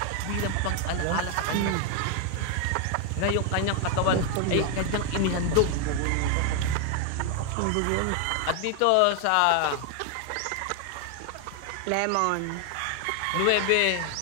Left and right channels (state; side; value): different; both; correlation 0.01